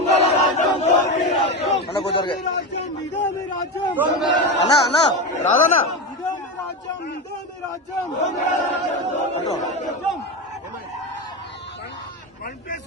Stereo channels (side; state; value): both; normal; correlation 0.18